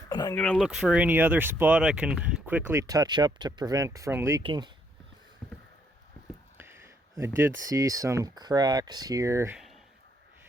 And I'm gonna look for any other spot I can quickly touch up to prevent from leaking. I did see some cracks here.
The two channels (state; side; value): normal; both; correlation 0.71